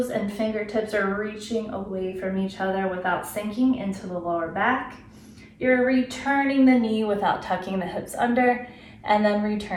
and fingertips are reaching away from each other without sinking into the lower back. You're returning the knee without tucking the hips under, and then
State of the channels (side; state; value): both; identical; correlation 1.00